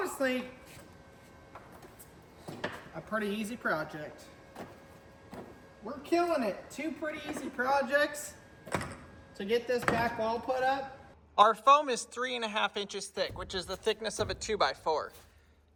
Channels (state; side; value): identical; both; correlation 1.00